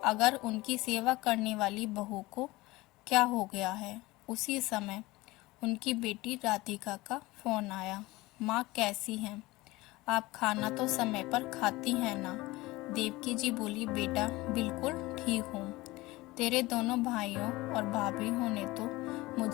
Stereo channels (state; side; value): quieter; right; 20.5 dB